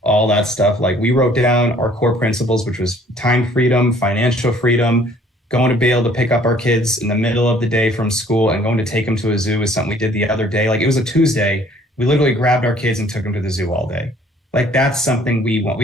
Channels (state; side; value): normal; both; correlation 0.57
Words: all that stuff. Like, we wrote down our core principles, which was time freedom, financial freedom, going to be able to pick up our kids in the middle of the day from school and going to take them to a zoo is something we did the other day. Like, it was a Tuesday. We literally grabbed our kids and took them to the zoo all day. Like, that's something we want.